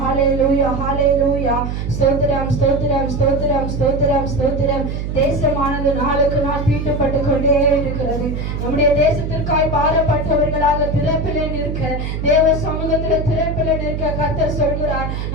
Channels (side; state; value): right; noise; hum, 4 dB below the sound